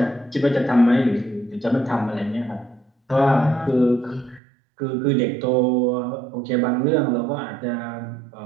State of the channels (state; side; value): drops out; left; at 4.4 s